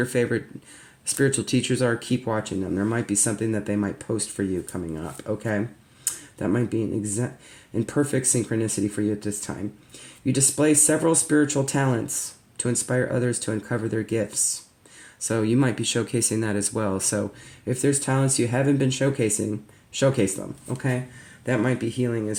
favorite spiritual teachers are, keep watching them. There might be something that they might post for you coming up, okay? That might be in perfect synchronicity for you at this time. You display several spiritual talents to inspire others to uncover their gifts. So you might be showcasing that as well. So if there's talents you haven't been showcasing, showcase them, okay? That might be healing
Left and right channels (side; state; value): both; identical; correlation 1.00